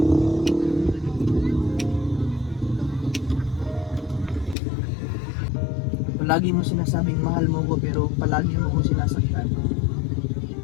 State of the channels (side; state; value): right; drops out; at 4.5 s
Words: Palagi mo sinasabing mahal mo ko pero palagi mo kong sinasaktan.